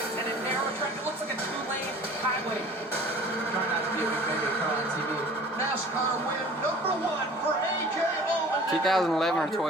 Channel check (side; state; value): both; normal; correlation 0.46